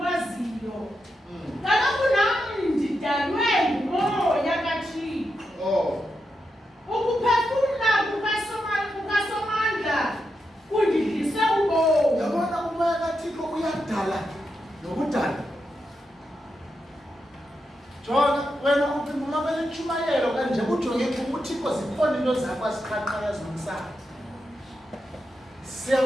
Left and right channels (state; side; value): normal; both; correlation 0.86